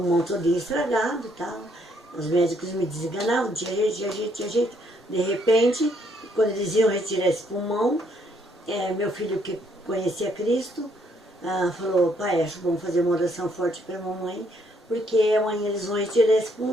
todo estragado e tal. Os médicos me desenganavam, tinha jeito, tinha jeito, tinha jeito. De repente, quando eles iam retirar esse pulmão, meu filho, que conhecia Cristo, falou: pai, acho bom fazer uma oração forte para a mamãe, porque amanhã eles vão retirar esse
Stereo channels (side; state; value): both; normal; correlation 0.70